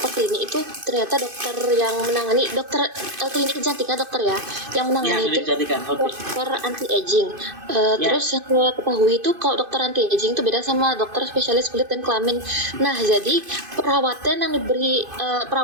klinik itu ternyata dokter yang menangani klinik kecantikan dokter ya yang menangani itu dokter anti aging. Terus yang saya ketahui itu kalau dokter anti aging itu beda sama dokter spesialis kulit dan kelamin. Nah jadi perawatan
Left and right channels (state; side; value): late; left; 2.5 ms